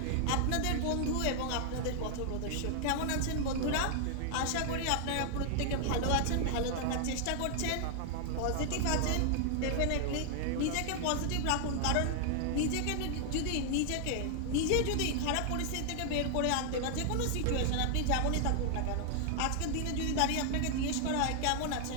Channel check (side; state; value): both; different; correlation 0.00